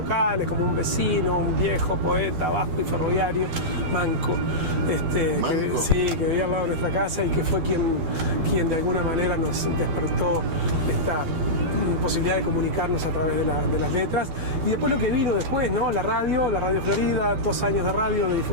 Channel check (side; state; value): left; late; 12 ms